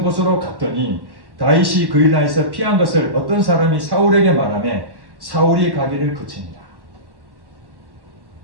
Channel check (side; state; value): left; late; 1.1 ms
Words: 곳으로 갔더니 다윗이 그 이스라엘에서 피한 것을 어떤 사람이 사울에게 말하며 사울이 가기를 그칩니다.